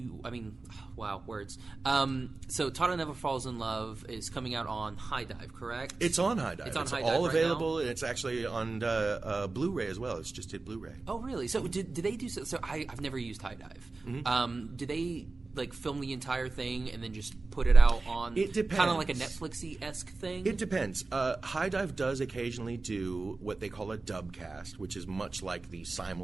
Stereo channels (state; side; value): quieter; left; 3.6 dB